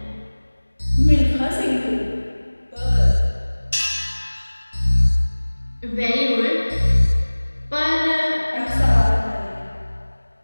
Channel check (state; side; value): inverted; both; correlation -1.00